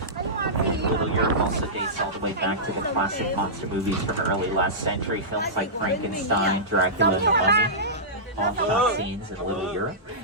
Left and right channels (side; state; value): both; normal; correlation -0.16